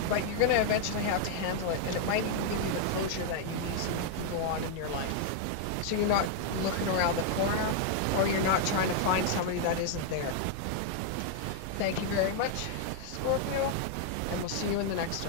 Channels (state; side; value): different; both; correlation 0.00